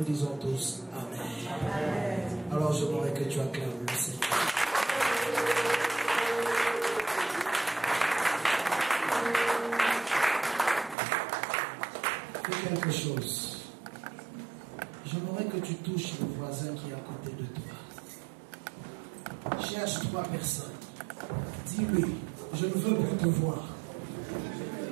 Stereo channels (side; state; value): left; drops out; at 11.0 s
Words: disons tous Amen. Alors je voudrais que tu acclames le Seigneur. Fais quelque chose. J'aimerais que tu touches le voisin qui est à côté de toi. Cherche 3 personnes. Dis-lui, je ne veux plus te voir.